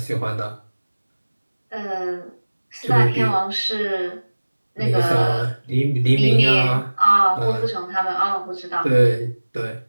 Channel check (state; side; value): inverted; both; correlation -1.00